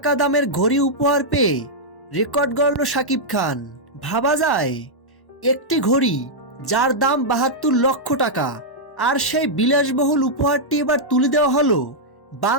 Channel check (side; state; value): right; late; 1.1 ms